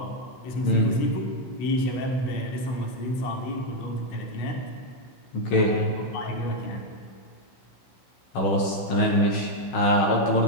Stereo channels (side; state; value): right; late; 16 ms